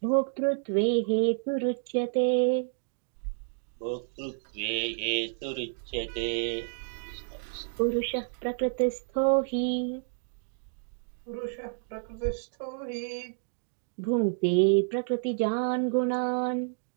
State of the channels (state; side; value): silent; left; digital silence